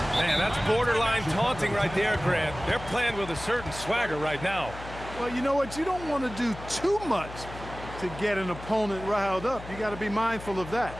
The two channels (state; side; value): noise; left; hum, 13 dB below the sound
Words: Man, that's borderline taunting right there, Grant. They're playing with a certain swagger right now. Well, you know what? You don't want to do too much to get an opponent riled up. You got to be mindful of that.